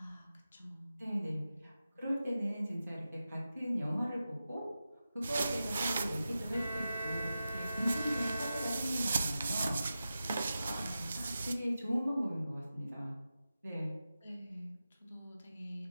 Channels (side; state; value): both; inverted; correlation -0.92